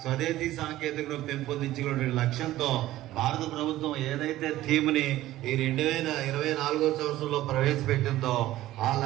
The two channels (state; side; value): quieter; left; 15.3 dB